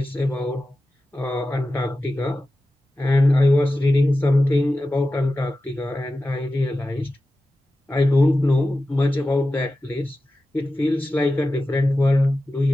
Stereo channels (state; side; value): normal; both; correlation 0.94